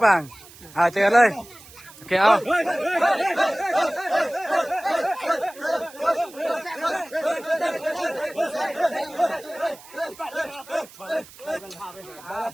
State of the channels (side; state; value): right; noise; hiss, 20 dB below the sound